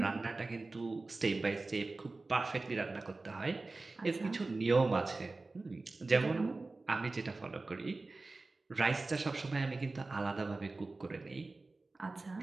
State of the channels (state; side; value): quieter; left; 3.4 dB